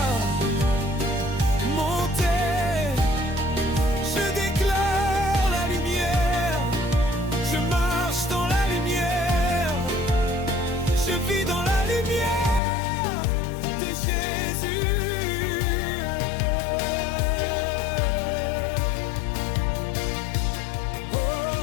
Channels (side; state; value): right; drops out; at 12.6 s